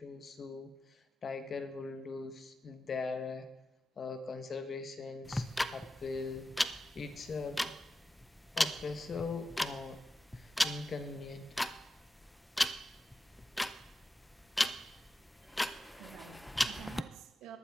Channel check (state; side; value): normal; both; correlation 0.92